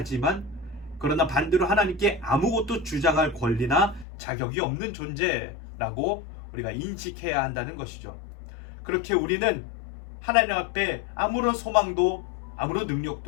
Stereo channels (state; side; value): drops out; right; at 4.0 s